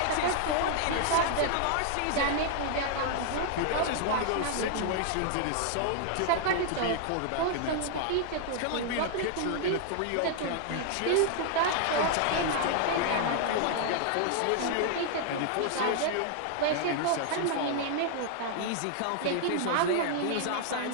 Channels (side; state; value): both; different; correlation 0.00